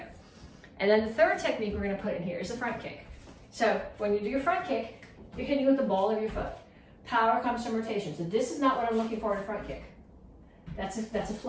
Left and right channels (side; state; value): both; identical; correlation 1.00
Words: And then the third technique we're gonna put in here is the front kick. So when you do your front kick, you're hitting with the ball of your foot. Power comes from rotation. So this is not what I'm looking for in a front kick. That's a